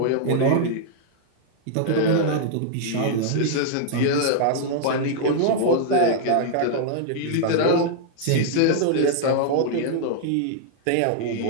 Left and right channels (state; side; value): different; both; correlation -0.01